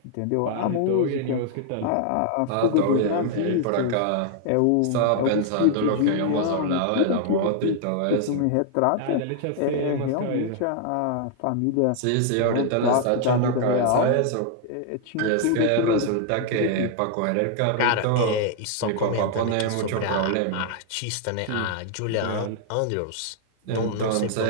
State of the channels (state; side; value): different; both; correlation 0.00